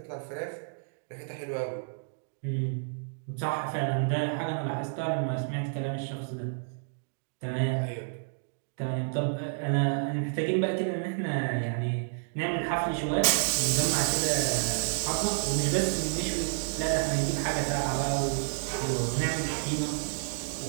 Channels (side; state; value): left; silent; digital silence